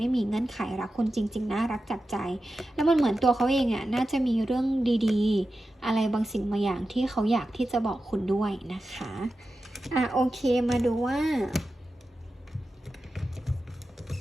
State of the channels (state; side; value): normal; both; correlation 0.92